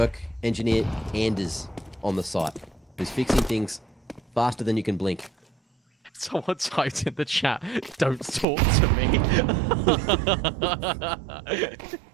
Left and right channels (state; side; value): drops out; left; at 8.5 s